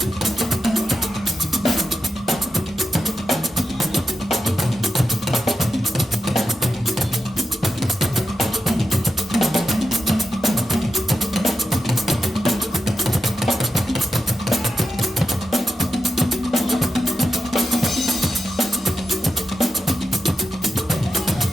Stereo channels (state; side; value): normal; both; correlation 0.88